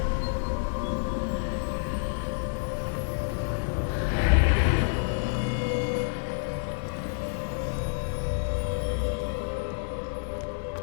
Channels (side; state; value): right; silent; 59 dB below the other